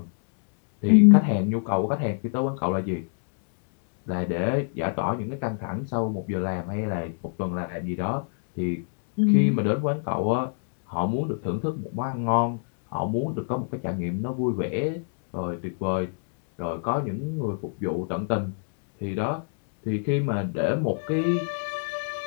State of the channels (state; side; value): silent; right; digital silence